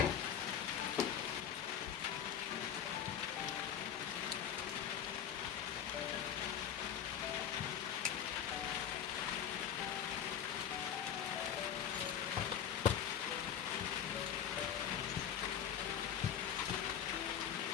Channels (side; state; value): right; quieter; 9.1 dB